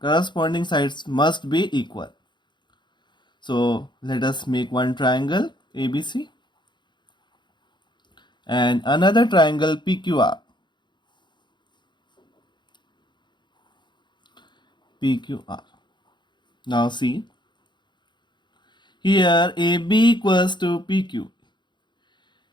sides must be equal. So let us make one triangle ABC and another triangle PQR. PQR. Now see, here AB equals to PQ.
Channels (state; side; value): late; right; 0.22 ms